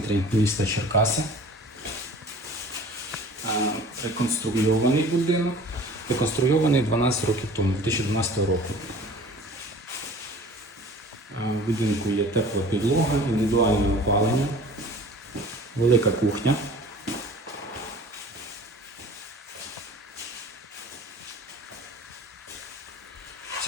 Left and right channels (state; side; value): normal; both; correlation 0.45